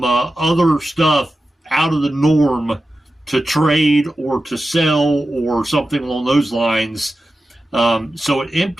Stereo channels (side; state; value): both; normal; correlation 0.93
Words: stuff out of the norm to trade or to sell or something along those lines. So it